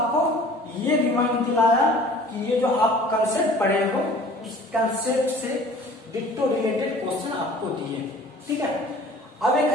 ये रिमाइंड दिलाया कि ये जो आप कंसेप्ट पढ़े हो इस कंसेप्ट से डिट्टो रिलेटेड क्वेश्चन आपको दिए। ठीक है, अब एक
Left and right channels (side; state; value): both; normal; correlation 0.48